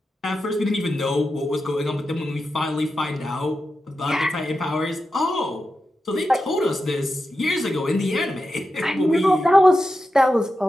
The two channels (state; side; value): normal; both; correlation 0.90